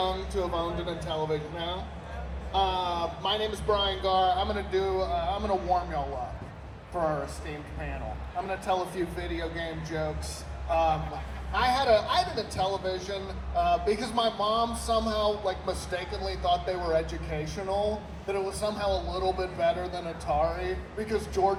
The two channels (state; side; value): identical; both; correlation 1.00